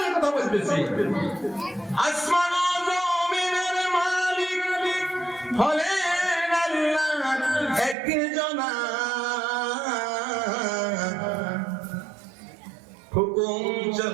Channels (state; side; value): drops out; left; at 8.0 s